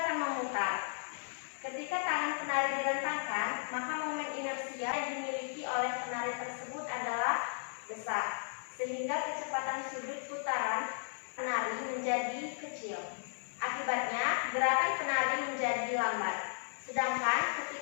memutar, besar, sehingga kecepatan sudut putaran penari menjadi kecil. Akibatnya, gerakan penari menjadi lambat. Sedangkan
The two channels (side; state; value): right; silent; digital silence